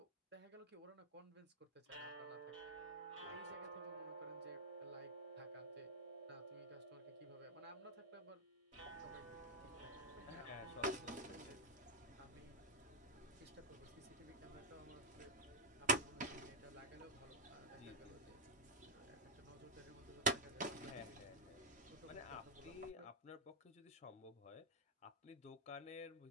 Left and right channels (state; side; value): normal; both; correlation -0.03